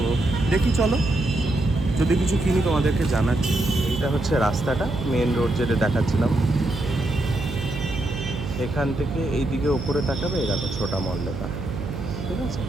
দেখি চলো, যদি কিছু কিনি তোমাদেরকে জানাচ্ছি। এইটা হচ্ছে রাস্তাটা, মেন রোড যেটা দেখাচ্ছিলাম। এখান থেকে এই দিকে ওপরে তাকাবে, এই দেখো ছোটা মল লেখা। ঠিক আছে,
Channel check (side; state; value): right; noise; hum, 7 dB below the sound